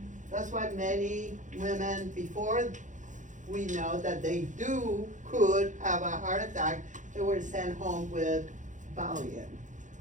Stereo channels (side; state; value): left; late; 0.36 ms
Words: That's why many women, before we know that they could have a heart attack, they were sent home with Valium